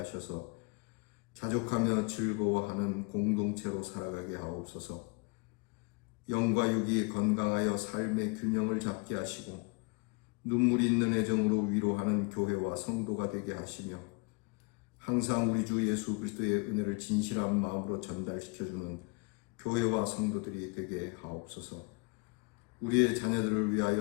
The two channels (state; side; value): quieter; right; 30.6 dB